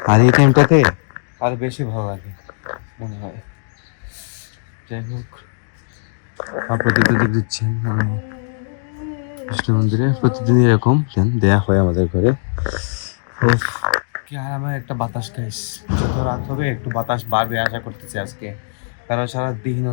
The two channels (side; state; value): right; silent; digital silence